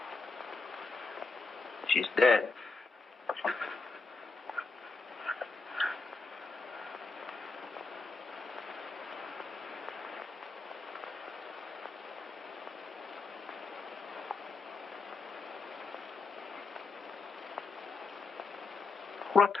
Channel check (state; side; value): quieter; right; 4.0 dB